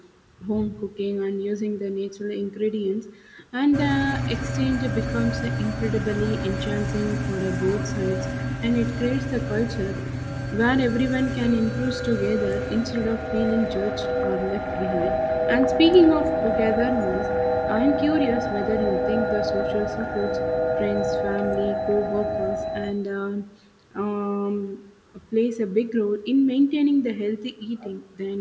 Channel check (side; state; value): both; identical; correlation 1.00